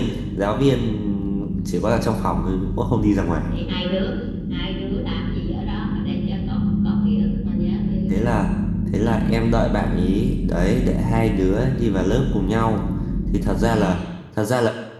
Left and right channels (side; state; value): both; identical; correlation 1.00